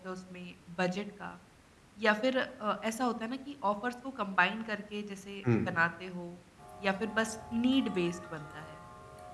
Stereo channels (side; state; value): both; identical; correlation 1.00